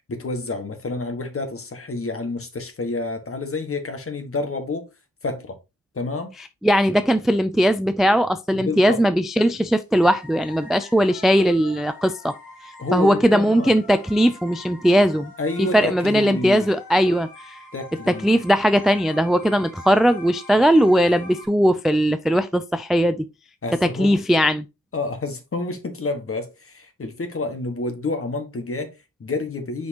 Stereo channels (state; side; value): normal; both; correlation 0.86